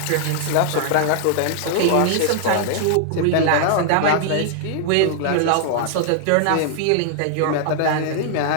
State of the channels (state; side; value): different; both; correlation 0.00